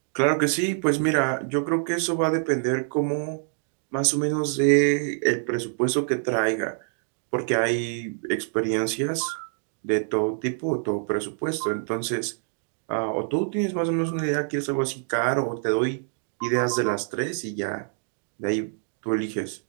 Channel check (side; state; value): left; silent; digital silence